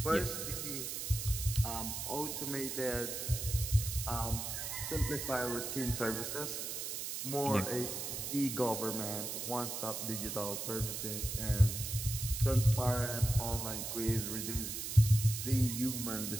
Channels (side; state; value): right; noise; hiss, 4 dB below the sound